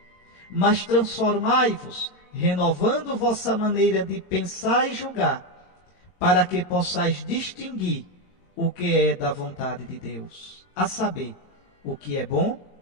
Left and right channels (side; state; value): right; late; 22 ms